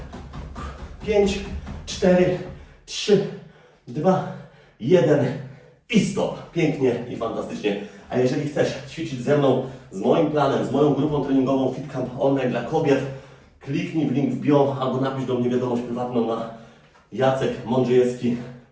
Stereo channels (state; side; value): identical; both; correlation 1.00